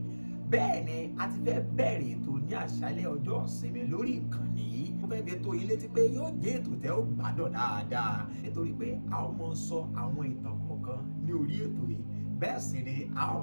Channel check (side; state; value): both; inverted; correlation -1.00